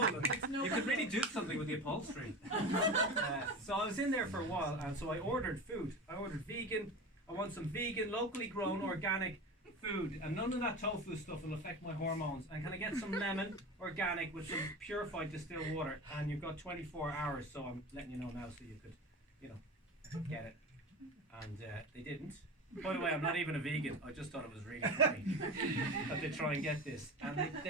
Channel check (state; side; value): normal; both; correlation 0.29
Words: You could really do something with the upholstery. So I was in there for a while, and so I ordered food. I ordered vegan. I want some vegan, locally grown, organic food, and none of that tofu stuff will affect my hormones. And can I get some lemon, organic, with some purified distilled water? And you've got 24 hours, so I'm letting you know now so you could, get it. And they didn't. By the way, I'm not even a vegan. I just thought it was really funny that they try and get this. And